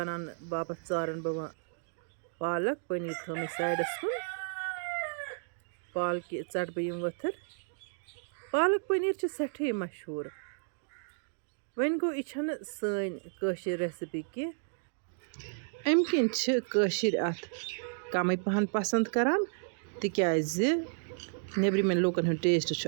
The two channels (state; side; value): silent; left; digital silence